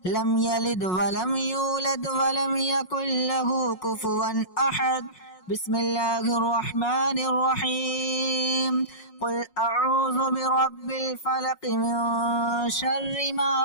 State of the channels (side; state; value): right; late; 5.5 ms